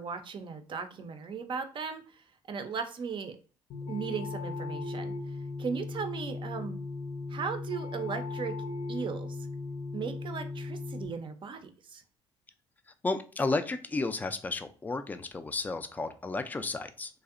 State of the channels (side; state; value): both; normal; correlation 0.59